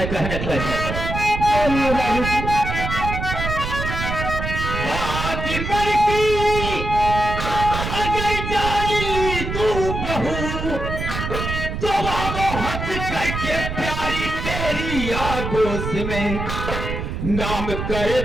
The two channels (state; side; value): noise; right; rumble, 4 dB below the sound